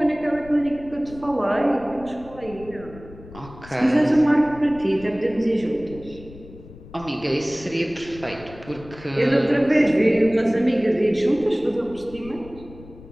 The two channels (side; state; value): left; noise; rumble, 18 dB below the sound